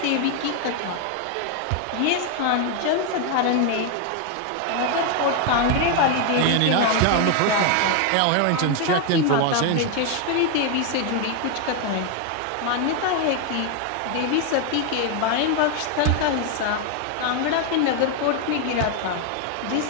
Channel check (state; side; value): different; both; correlation 0.01